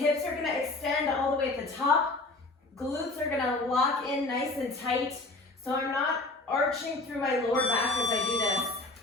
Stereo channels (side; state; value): right; quieter; 3.1 dB